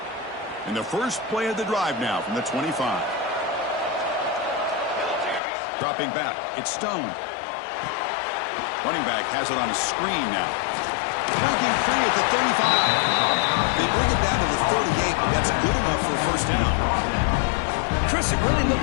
And the first play of the drive now from the 25. Dropping back, it's Stone. Running back has it on a screen now. Breaking free at the 35. They bring it down to the 38, but that's good enough for a first down. Chris, it really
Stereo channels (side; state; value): right; drops out; at 5.4 s